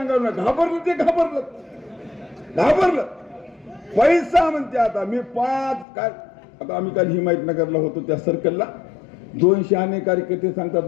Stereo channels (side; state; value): right; drops out; at 5.9 s